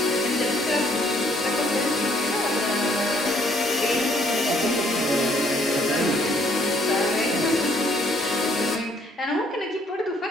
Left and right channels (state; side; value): normal; both; correlation 0.65